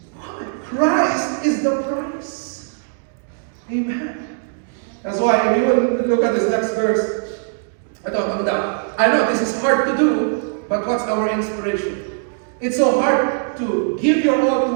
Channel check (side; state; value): left; silent; digital silence